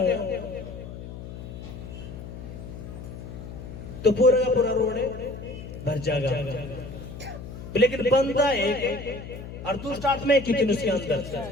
तो पूरा का पूरा रोड भर जाएगा। लेकिन बंदा एक और दुष्ट आत्माएं कितनी उसके अंदर?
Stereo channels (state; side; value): noise; left; hum, 11 dB below the sound